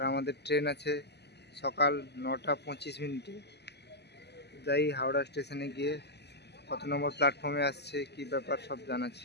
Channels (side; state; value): right; late; 0.49 ms